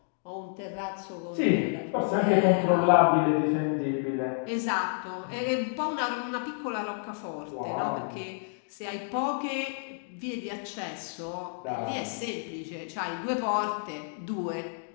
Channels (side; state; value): right; silent; digital silence